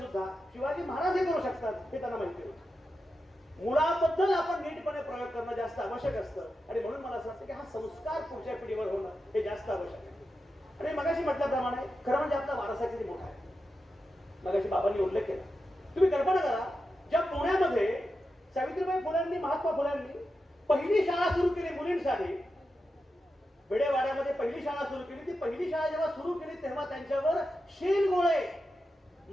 शिवाजी महाराज हे करू शकतात हे त्यांना माहिती होतं. मुलाबद्दल आपण नीटपणे प्रयोग करणं जास्त आवश्यक असतं. आणि म्हणून मला असं वाटतं की हा संस्कार पुढच्या पिढीवर होणं हे जास्त आवश्यक आहे. आणि मगाशी म्हटल्याप्रमाणे खरं म्हणजे आपला वारसा किती मोठा आहे. मगाशी बाबांनी उल्लेख केला. तुम्ही कल्पना करा, ज्या पुण्यामध्ये सावित्रीबाई फुल्यांनी, महात्मा फुल्यांनी पहिली शाळा सुरू केली मुलींसाठी, बेडेवाड्यामध्ये पहिली शाळा सुरू केली. ती पहिली शाळा जेव्हा सुरू केली तेव्हा त्यांच्यावर शेणगोळे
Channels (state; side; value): normal; both; correlation 0.90